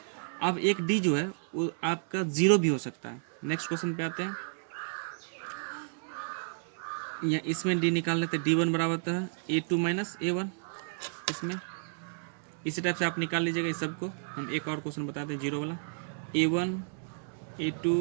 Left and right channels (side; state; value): left; silent; digital silence